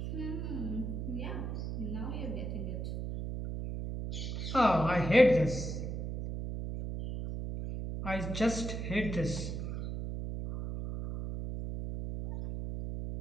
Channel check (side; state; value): right; noise; hum, 4 dB below the sound